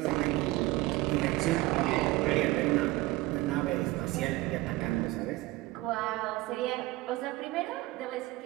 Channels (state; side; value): quieter; left; 19.6 dB